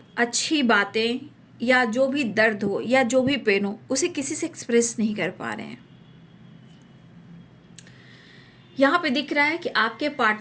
अच्छी बातें या जो भी दर्द हो या जो भी पेन हो उसे किसी से एक्सप्रेस नहीं कर पा रहे हैं। यहाँ पे दिख रहा है कि आपके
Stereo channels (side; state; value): both; identical; correlation 1.00